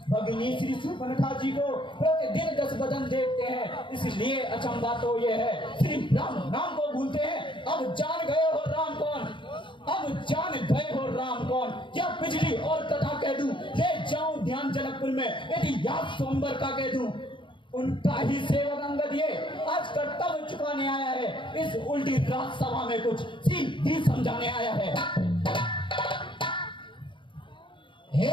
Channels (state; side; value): late; right; 0.24 ms